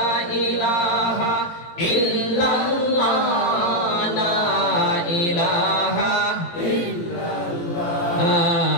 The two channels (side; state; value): right; late; 18 ms